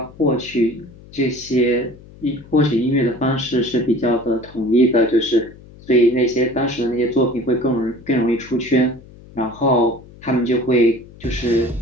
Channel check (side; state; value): left; noise; hum, 21 dB below the sound